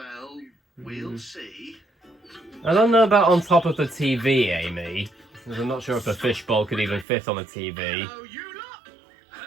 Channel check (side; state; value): left; drops out; at 7.1 s